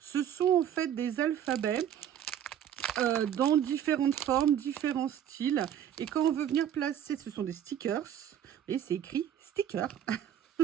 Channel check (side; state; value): left; quieter; 10.0 dB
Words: sont en fait des alphabets dans différentes formes, différents styles. Et quand on veut venir placer, ce sont des stickers. Vous voyez, c'est écrit sticker.